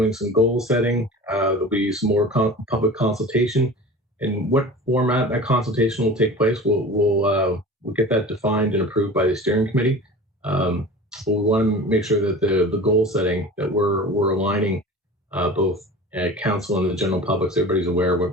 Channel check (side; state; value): both; normal; correlation 0.37